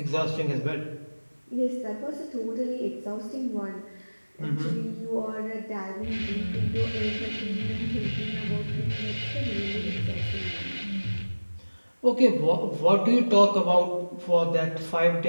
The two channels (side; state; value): both; inverted; correlation -1.00